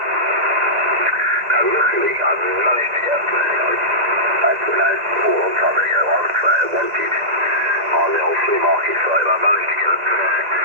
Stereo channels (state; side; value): late; left; 2.0 ms